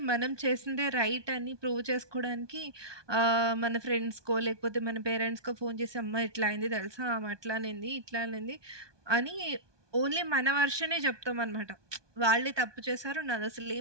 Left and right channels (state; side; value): late; left; 1.2 ms